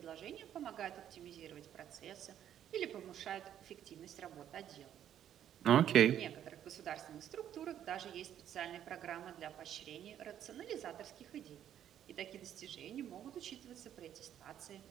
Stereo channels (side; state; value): left; quieter; 10.4 dB